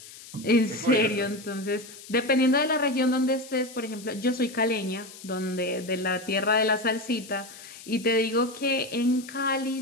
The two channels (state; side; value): noise; left; hiss, 17 dB below the sound